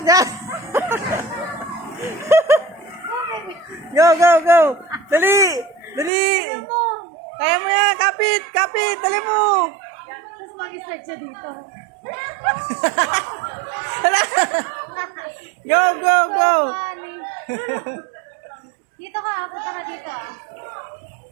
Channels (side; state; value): left; drops out; at 6.1 s